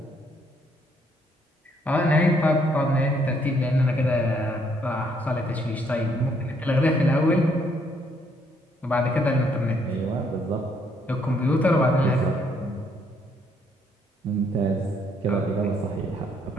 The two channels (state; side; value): normal; both; correlation 0.69